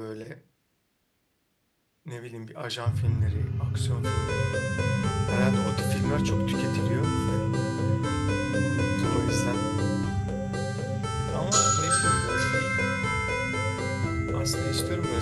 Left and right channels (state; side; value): identical; both; correlation 1.00